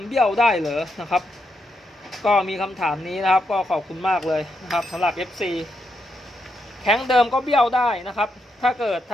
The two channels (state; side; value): normal; both; correlation 0.81